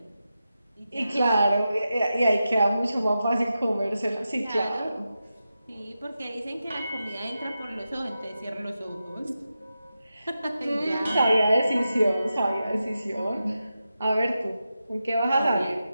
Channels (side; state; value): both; inverted; correlation -0.90